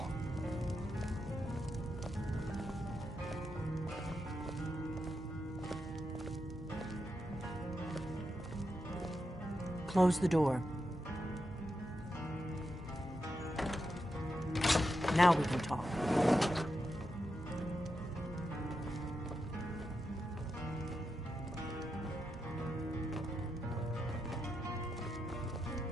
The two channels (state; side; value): normal; both; correlation 0.86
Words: Close the door. Now we can talk.